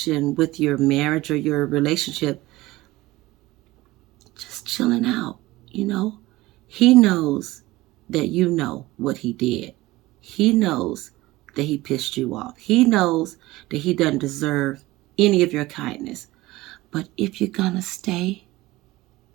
with your marriage or your relationship just chilling out. He knows that you know what he did. He knows that he pissed you off. He knows that he doesn't deserve any of your kindness. But if you're gonna stay,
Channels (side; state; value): left; quieter; 18.8 dB